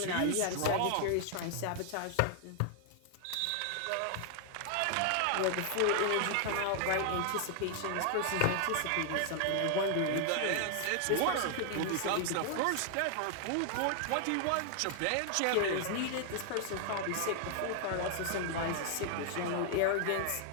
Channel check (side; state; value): both; different; correlation 0.00